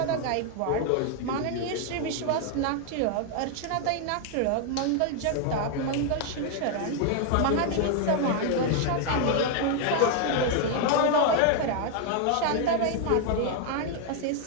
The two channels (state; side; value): different; both; correlation 0.00